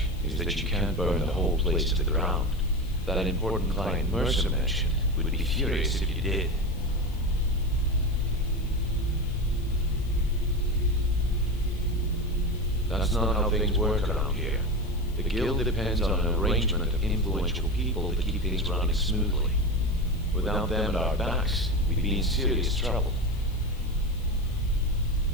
is that you can't burn the whole place to the ground. That important client Mercer mentioned would be furious if you did. That's not how things work around here. The guild depends on an arrangement of influential people to keep things running smoothly. Without them at our backs, we'd be in serious trouble.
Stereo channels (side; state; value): left; noise; hiss, 24 dB below the sound